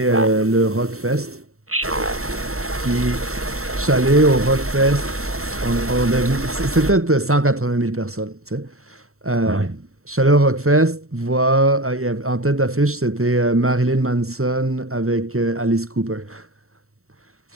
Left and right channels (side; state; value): left; late; 0.63 ms